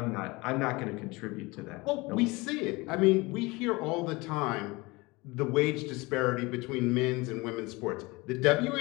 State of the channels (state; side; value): quieter; right; 23.8 dB